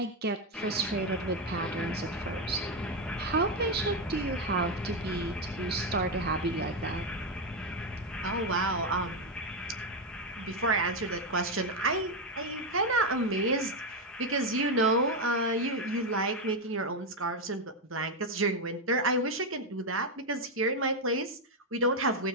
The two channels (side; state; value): both; normal; correlation 0.06